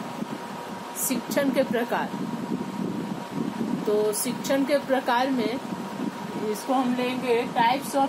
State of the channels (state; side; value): identical; both; correlation 1.00